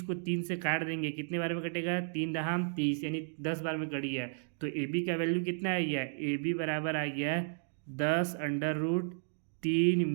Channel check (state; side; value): silent; left; digital silence